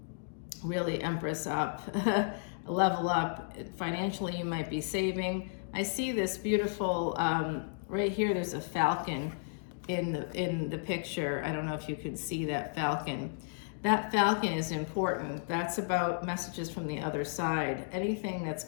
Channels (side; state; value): right; silent; digital silence